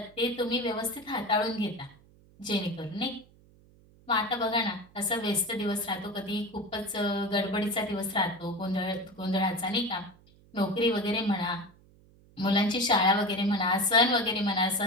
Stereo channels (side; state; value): right; noise; hum, 27 dB below the sound